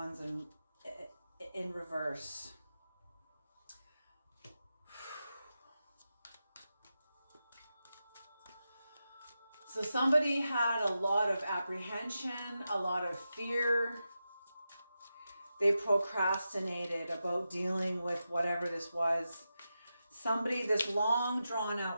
in reverse? So somebody had a lot of apprehension, a lot of fear. They procrastinated about dealing with whatever this was. Somebody, this long drawn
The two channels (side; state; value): both; inverted; correlation -0.90